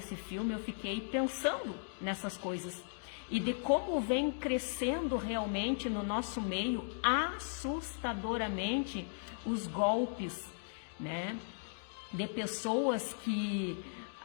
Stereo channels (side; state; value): right; silent; digital silence